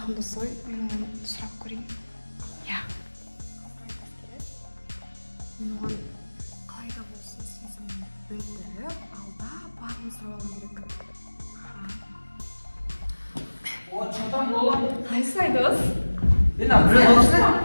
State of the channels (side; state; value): both; inverted; correlation -1.00